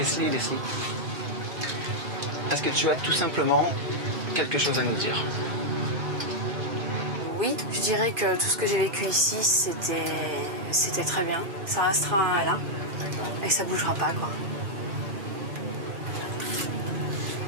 est-ce que tu as tout simplement quelque chose à nous dire? Oui, je dirais que tout ce que j'ai vécu ici, c'était très bien. Ça restera là et ça bougera pas, quoi.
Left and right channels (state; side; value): late; left; 2.4 ms